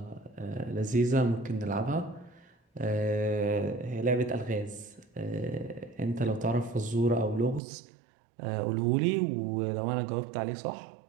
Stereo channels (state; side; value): drops out; left; at 7.6 s